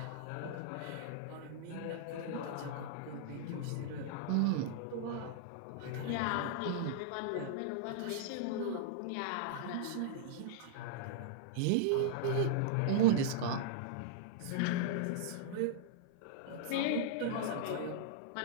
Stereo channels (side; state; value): both; different; correlation -0.01